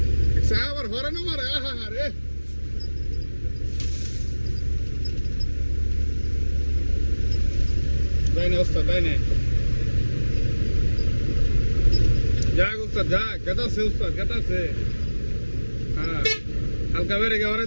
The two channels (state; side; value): inverted; both; correlation -1.00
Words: আবার হরে না মারে আহা রে তাই না ওস্তাদ তাই না যাক উস্তাদ যাক কেটাছে উস্তাদ কেটাছে হ্যাঁ হালকা বেড়ে গে